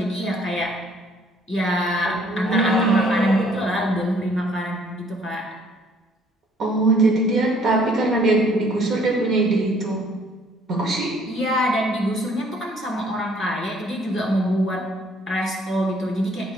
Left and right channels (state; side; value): normal; both; correlation 0.61